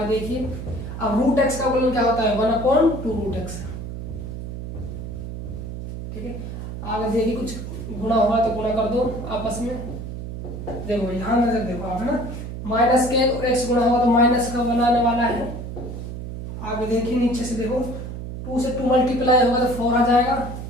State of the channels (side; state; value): right; noise; hum, 8 dB below the sound